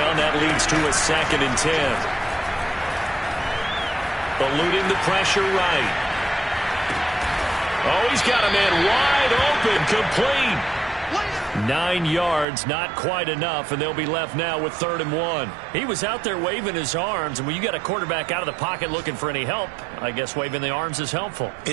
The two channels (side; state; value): left; drops out; at 12.5 s